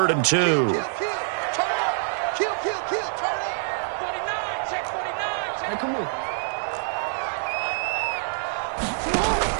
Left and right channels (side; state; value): left; silent; digital silence